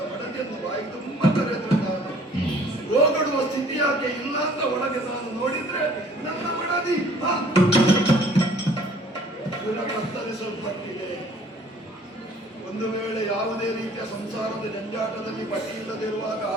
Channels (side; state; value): both; normal; correlation 0.55